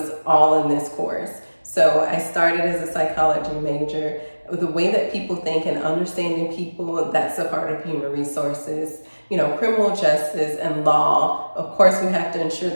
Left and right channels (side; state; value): both; inverted; correlation -1.00